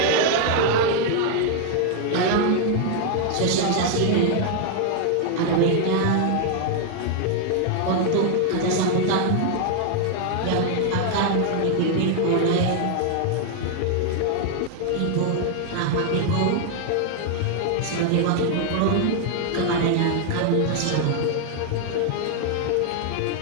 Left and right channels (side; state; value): both; different; correlation 0.00